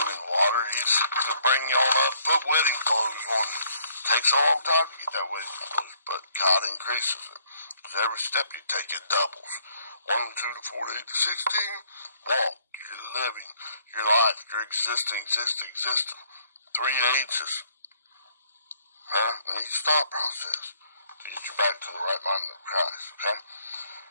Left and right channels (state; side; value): inverted; both; correlation -0.63